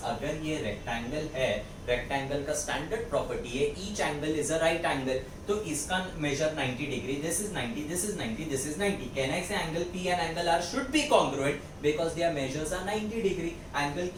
अगर ये rectangle है, rectangle का standard property है, each angle is a right angle. तो इसका measure 90 degree. This is 90, this is 90, this is 90. Can I say angle P and angle R should be congruent because their measures are 90 degree. Angle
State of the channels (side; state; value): both; identical; correlation 1.00